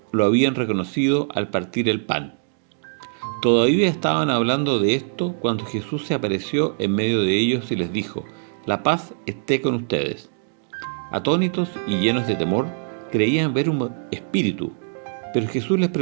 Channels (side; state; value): left; silent; digital silence